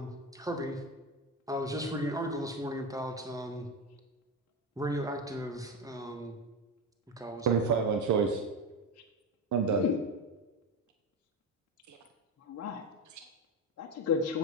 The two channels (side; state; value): both; normal; correlation 0.17